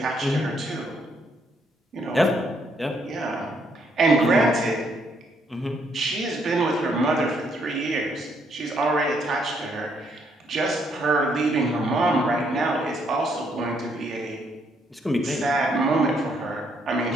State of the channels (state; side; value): normal; both; correlation 0.72